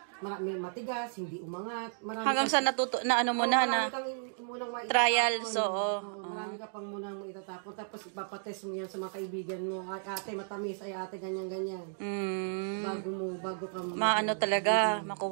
Marami matigas, hindi umangat. Hanggang sa natuto, na ano mo na, na trials, oo. Marami ka pang munang itatapon. Tapos ipapatest mo yan sa mga kaibigan mo. Ay, ate, matamis. Ay, ate, ganyan-ganyan. Bago ka maano talaga,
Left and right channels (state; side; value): silent; left; digital silence